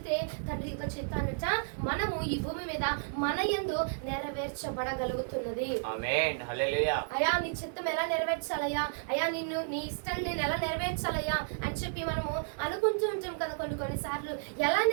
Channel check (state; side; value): silent; left; digital silence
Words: తండ్రి యొక్క చిత్తాన్నట మనము ఈ భూమి మీద మన యందు నెరవేర్చబడగలుగుతున్నది. ఆమేన్. హల్లెలూయా. అయ్యా నీ చిత్తం ఎలా నెరవేర్చాలయ్యా, అయ్యా నీ ఇష్టం నేను ఎలా నెరవేర్చాలయ్యా అని చెప్పి మనము అనుకుంటూ ఉంటాం కదా. కొన్నిసార్లు ఎలా